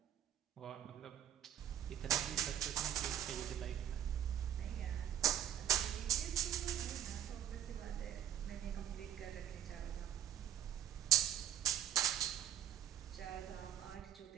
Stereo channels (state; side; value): quieter; left; 10.7 dB